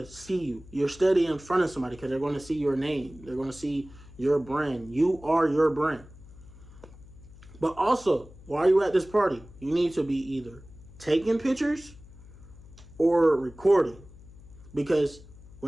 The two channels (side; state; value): left; noise; hum, 20 dB below the sound